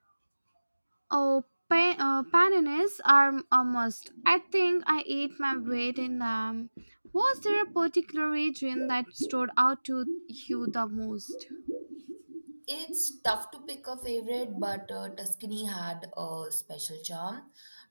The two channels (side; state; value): both; inverted; correlation -1.00